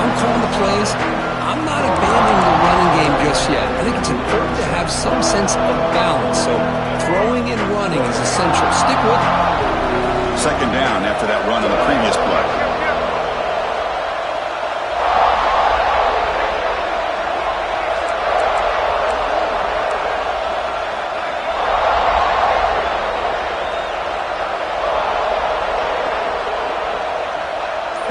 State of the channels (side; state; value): both; identical; correlation 1.00